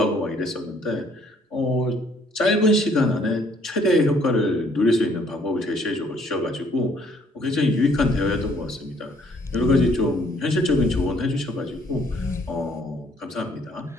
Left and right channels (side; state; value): both; normal; correlation 0.64